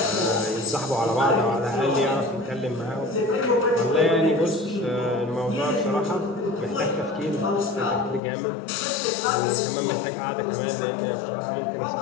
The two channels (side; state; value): right; drops out; at 8.2 s